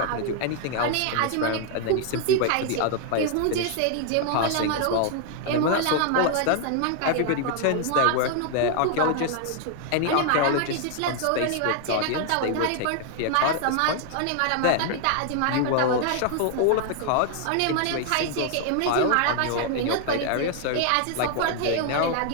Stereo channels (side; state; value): both; different; correlation 0.00